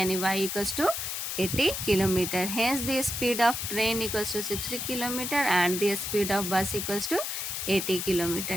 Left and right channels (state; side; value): noise; left; hiss, 3 dB below the sound